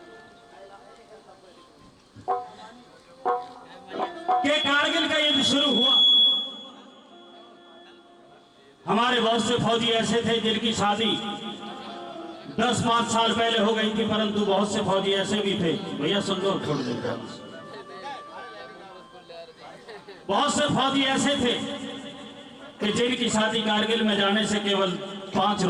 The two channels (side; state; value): both; identical; correlation 1.00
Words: कि कारगिल का युद्ध शुरू हुआ, हमारे बहुत से फौजी ऐसे थे जिनकी शादी 10-5 साल पहले हो गई थी, परंतु बहुत से फौजी ऐसे भी थे, भैया सुन लो छोड़ दो, बहुत से फौजी ऐसे थे कि जिनकी शादी कारगिल में जाने से केवल 5